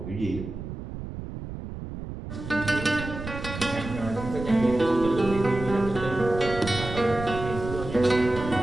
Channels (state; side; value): noise; right; rumble, 9 dB below the sound